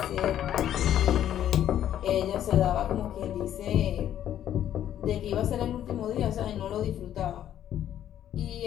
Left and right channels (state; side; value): quieter; right; 11.0 dB